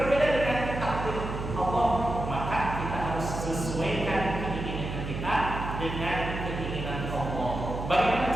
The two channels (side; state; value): right; noise; hum, 5 dB below the sound